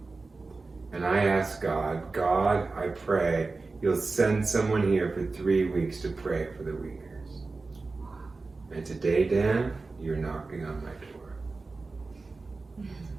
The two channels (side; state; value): left; quieter; 3.8 dB